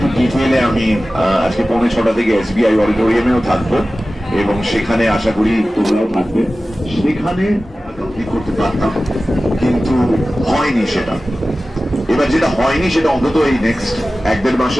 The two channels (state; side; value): normal; both; correlation 0.96